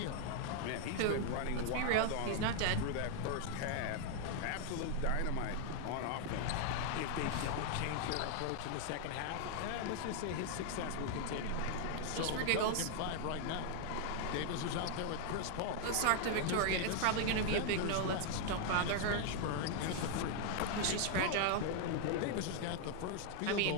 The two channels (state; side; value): different; both; correlation 0.00